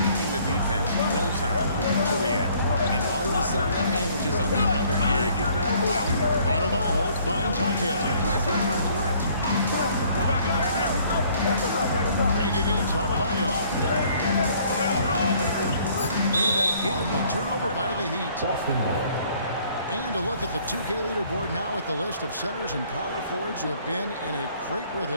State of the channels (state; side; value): inverted; both; correlation -0.60